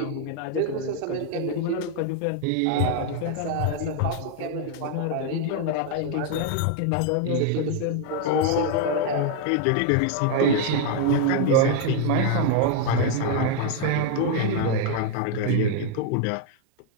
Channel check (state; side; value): different; both; correlation 0.00